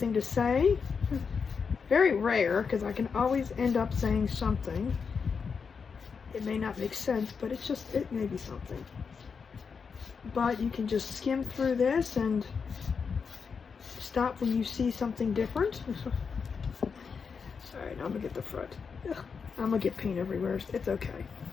to say. Very rare, because I can always end up saying something. It may not make sense, but it's just, it may be something. But you can just skim through this and stop when you see something different. Alright, now I'm going to get the front. I'm going to get paint everywhere. It's okay.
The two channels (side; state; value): right; quieter; 5.8 dB